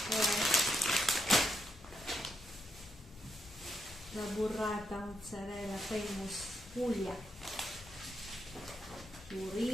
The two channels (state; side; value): normal; both; correlation 0.80